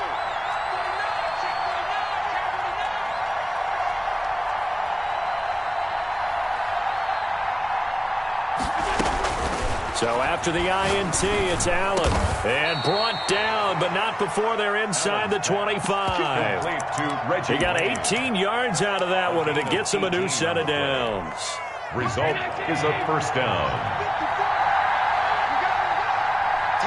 So after the INT, it's Allen. And brought down, but not before they're inside the 25. He got 18 yards out of that one, and it gets him a new set of downs. Result is a first down.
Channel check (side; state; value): both; identical; correlation 1.00